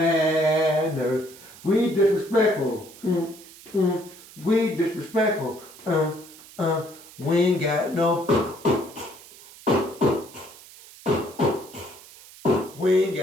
We disrespectful. We disrespectful. We ain't got no. We ain't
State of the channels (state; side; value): noise; right; hiss, 20 dB below the sound